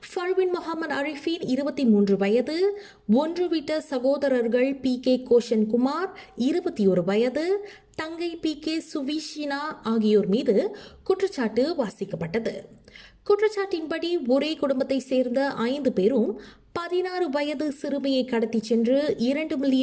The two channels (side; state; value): both; identical; correlation 1.00